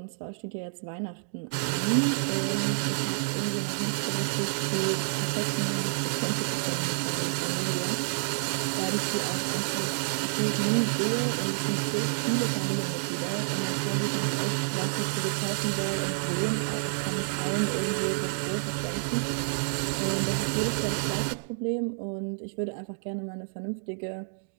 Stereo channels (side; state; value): left; silent; digital silence